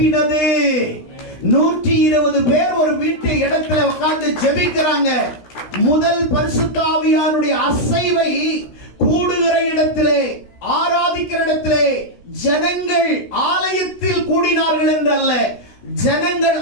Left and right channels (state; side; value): late; right; 16 ms